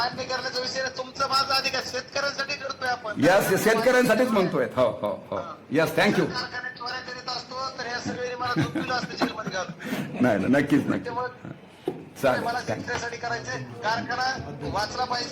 करण्याचा विषय नाही, तुमचा माझा अधिकार शेतकऱ्यांसाठी करतोय आपण. यस, शेतकऱ्यांसाठीच म्हणतोय. हो. Yes, thank you. कारखान्यात चोऱ्या करीत असतो तर ह्या सगळ्यांनी मला झोपलेलं असतं जेलमध्ये घालून. नाही, नक्कीच. त्यामुळे चालेल, मला शेतकऱ्यासाठी करायचे. कारखाना वाचला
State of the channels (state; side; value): identical; both; correlation 1.00